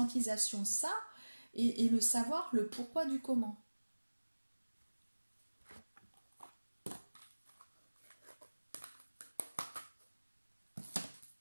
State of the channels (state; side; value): inverted; both; correlation -1.00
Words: de ça, et le savoir, le pourquoi du comment.